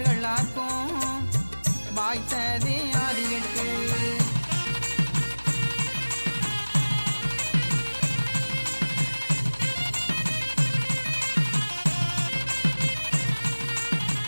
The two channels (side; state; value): both; inverted; correlation -1.00